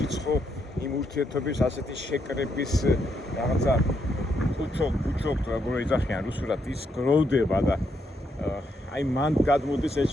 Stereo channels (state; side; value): normal; both; correlation 0.78